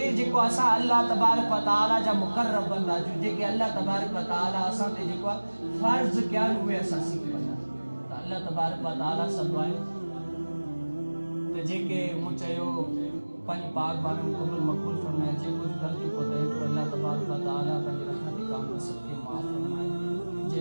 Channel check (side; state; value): both; inverted; correlation -1.00